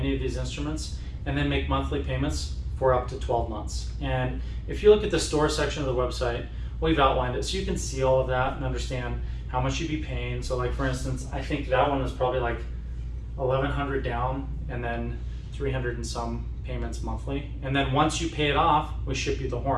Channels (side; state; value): both; identical; correlation 1.00